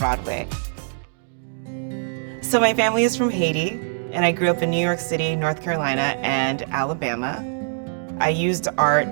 So my family is from Haiti, and I grew up in New York City, North Carolina, and Alabama. I used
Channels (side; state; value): left; silent; digital silence